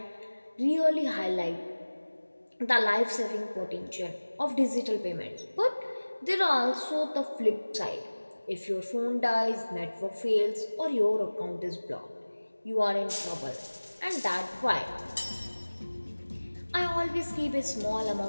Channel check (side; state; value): both; inverted; correlation -1.00